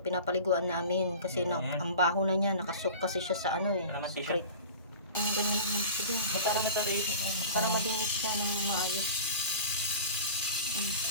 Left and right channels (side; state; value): both; inverted; correlation -0.38